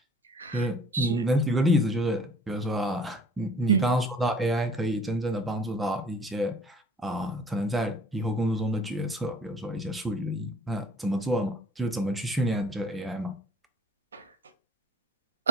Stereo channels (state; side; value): normal; both; correlation 0.52